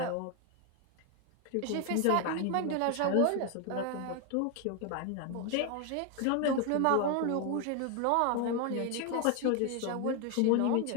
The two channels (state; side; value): different; both; correlation 0.01